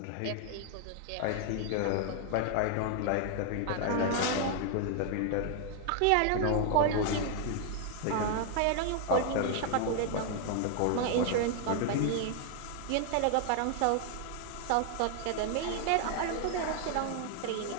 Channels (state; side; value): different; both; correlation 0.00